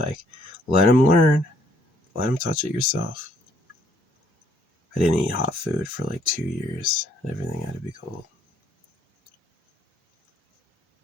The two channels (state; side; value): normal; both; correlation 0.66